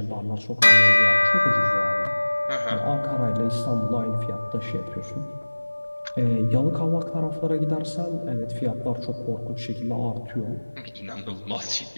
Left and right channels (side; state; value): both; inverted; correlation -1.00